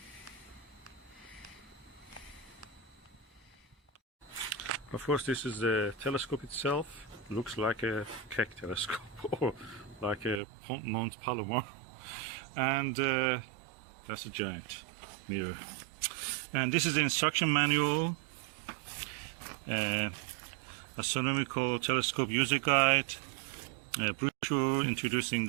Of course, this is the telescope itself. Looks like a Keck telescope or like a Mount Palomar. And that's a giant mirror. And this is the instruction manual, astronomical telescope user guide, brochure introducing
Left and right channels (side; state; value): left; drops out; at 10.4 s